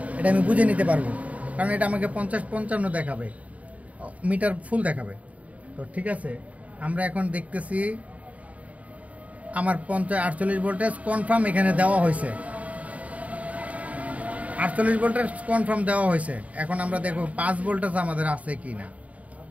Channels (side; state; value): left; late; 0.069 ms